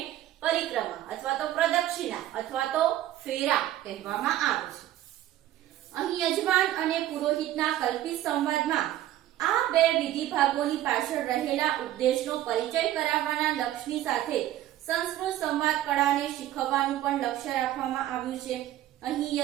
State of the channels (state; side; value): quieter; left; 13.5 dB